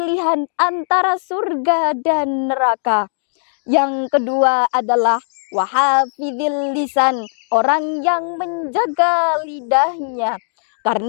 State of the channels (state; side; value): silent; right; digital silence